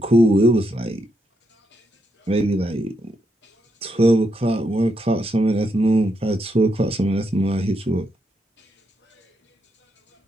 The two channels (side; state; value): both; normal; correlation 0.80